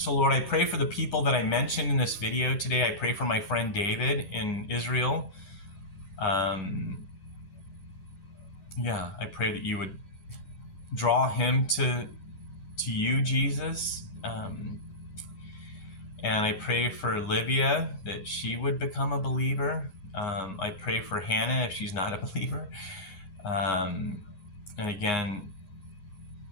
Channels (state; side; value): late; right; 11 ms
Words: Lord, I pray for the people that I mentioned in this video today. I pray for my friend David in Israel. I pray that you would draw him to you, Jesus. And I pray for Livia, that she would become a believer. I pray for Hannah if she's not a believer. And again,